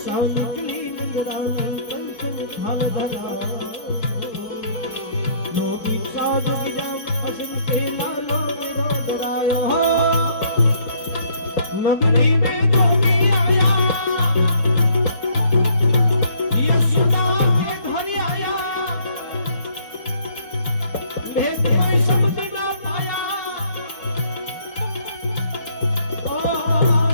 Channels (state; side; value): late; right; 4.8 ms